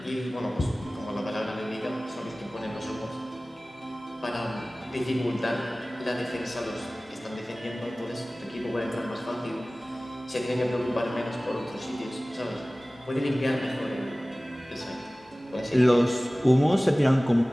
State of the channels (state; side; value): normal; both; correlation 0.98